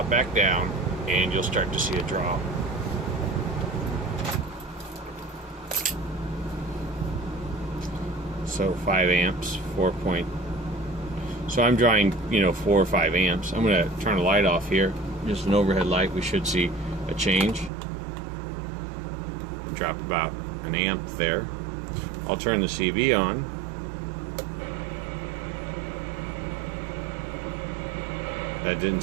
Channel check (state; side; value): drops out; left; at 17.7 s